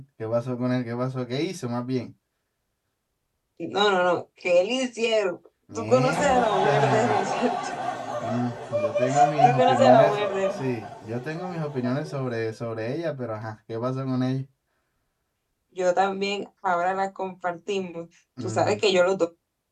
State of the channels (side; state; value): both; identical; correlation 1.00